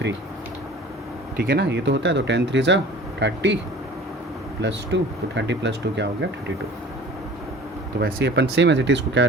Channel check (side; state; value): both; normal; correlation 0.44